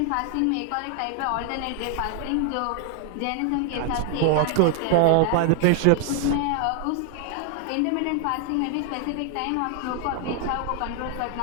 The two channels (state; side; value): different; both; correlation 0.00